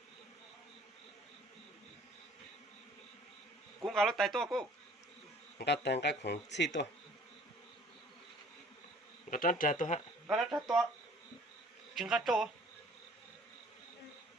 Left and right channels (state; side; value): normal; both; correlation 0.54